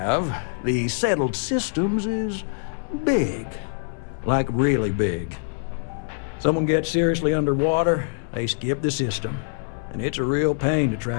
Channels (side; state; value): right; silent; digital silence